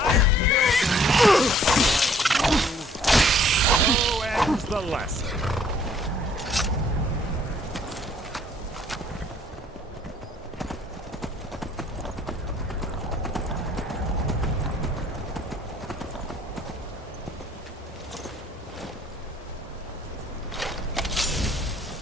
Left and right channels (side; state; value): both; normal; correlation 0.60